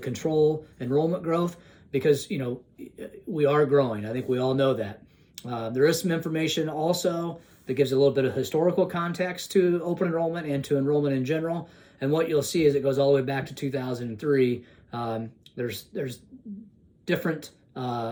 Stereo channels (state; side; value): identical; both; correlation 1.00